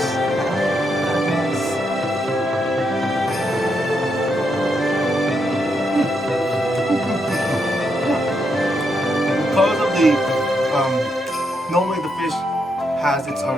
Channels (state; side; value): normal; both; correlation 0.80